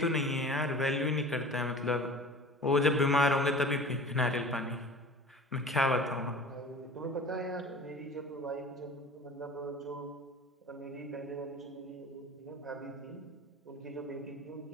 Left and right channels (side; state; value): both; normal; correlation 0.40